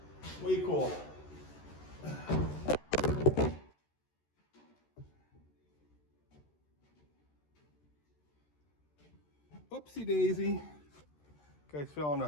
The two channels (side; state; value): right; late; 13 ms